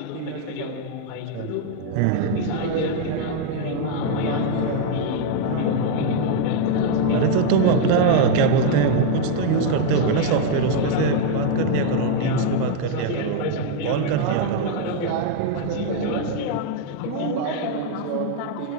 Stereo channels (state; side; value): different; both; correlation 0.00